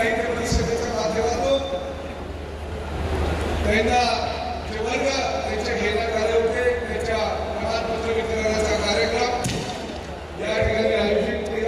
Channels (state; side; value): identical; both; correlation 1.00